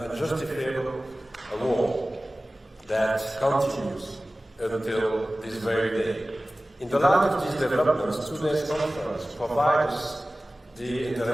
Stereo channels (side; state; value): both; normal; correlation 0.97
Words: unjustifiable war that continues until this very day. In the light of these developments, today's conference provides the